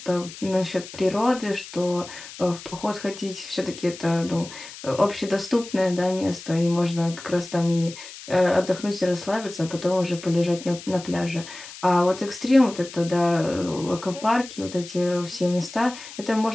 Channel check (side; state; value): left; noise; hiss, 15 dB below the sound